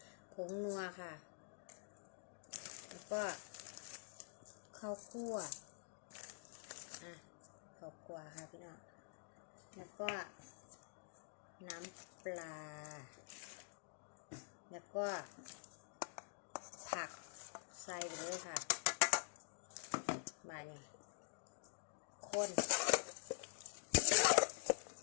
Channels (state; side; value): silent; right; digital silence